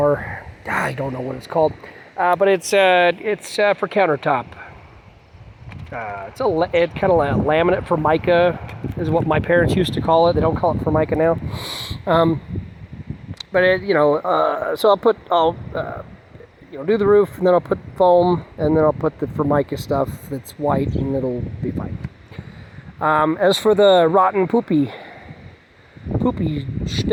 I don't know what it's called, but it's for countertop. It's kind of like laminate formica is what my parents used to call it. They don't call it formica now. but it, so I'll do the roof, and then I'll put foam, and then I'll put the Formica stuff that's white, and it'll be fine. As for the rotten poopy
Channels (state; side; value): identical; both; correlation 1.00